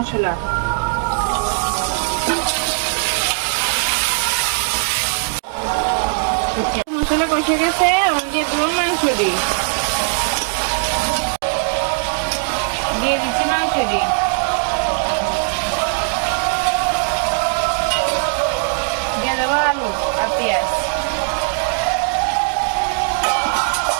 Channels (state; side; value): silent; left; digital silence